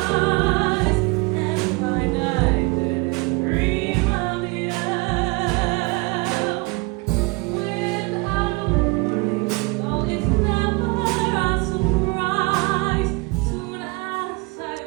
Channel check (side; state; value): left; quieter; 27.1 dB